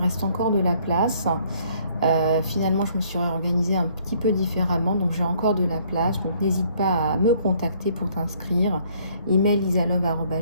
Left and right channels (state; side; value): inverted; both; correlation -0.63